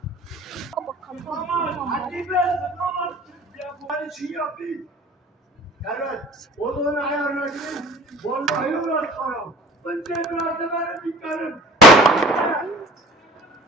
Onun ayarına gidin. Vallahi uğraşmam. Ben tekrar benim dikkarım.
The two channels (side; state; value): both; normal; correlation 0.45